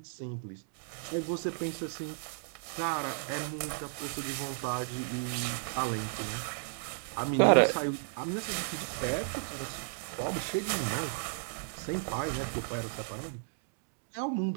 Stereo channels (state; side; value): silent; left; digital silence